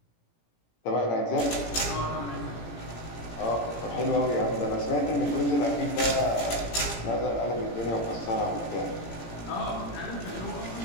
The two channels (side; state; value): right; late; 18 ms